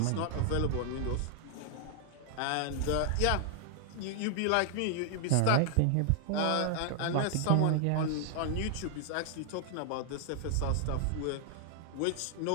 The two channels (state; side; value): different; both; correlation 0.00